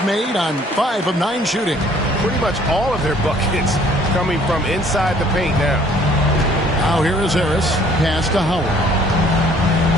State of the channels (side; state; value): both; normal; correlation 0.58